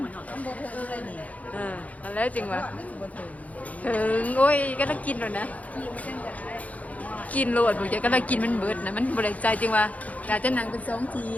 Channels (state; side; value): late; right; 0.071 ms